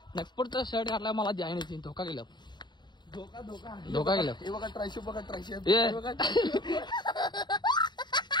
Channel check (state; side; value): late; right; 0.21 ms